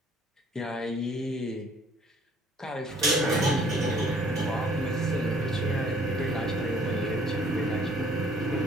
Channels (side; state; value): both; normal; correlation 0.58